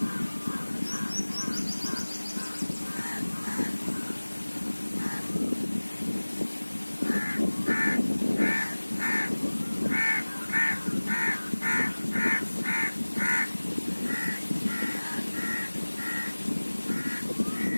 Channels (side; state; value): both; inverted; correlation -1.00